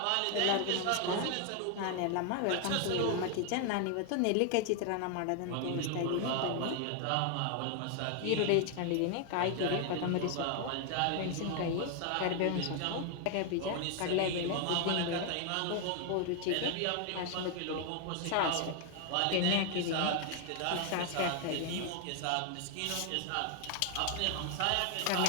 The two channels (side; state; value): both; different; correlation 0.00